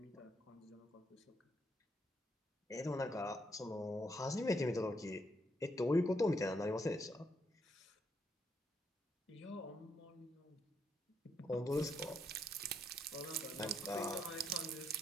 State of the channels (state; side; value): normal; both; correlation 0.76